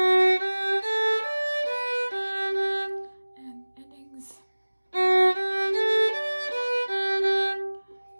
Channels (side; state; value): both; inverted; correlation -1.00